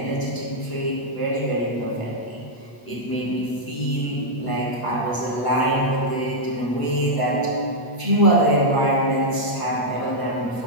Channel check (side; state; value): right; late; 8.4 ms